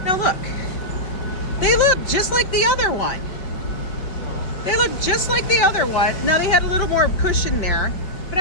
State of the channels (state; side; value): late; right; 5.2 ms